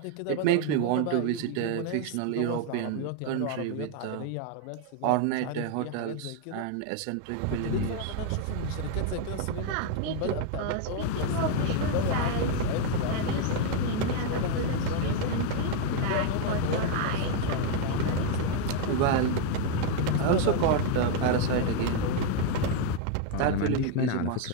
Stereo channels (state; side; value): different; both; correlation 0.01